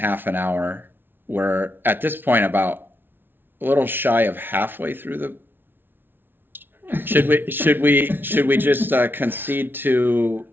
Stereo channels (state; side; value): late; left; 0.10 ms